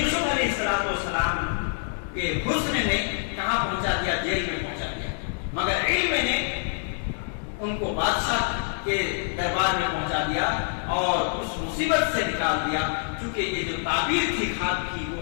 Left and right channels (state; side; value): silent; right; digital silence